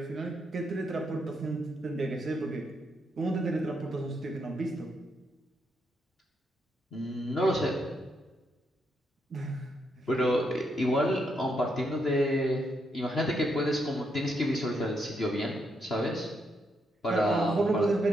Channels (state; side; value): normal; both; correlation 0.78